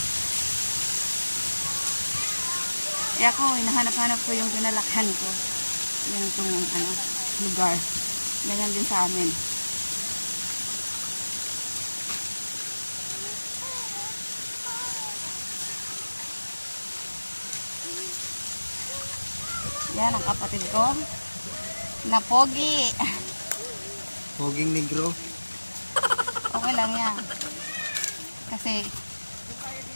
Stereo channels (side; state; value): both; inverted; correlation -1.00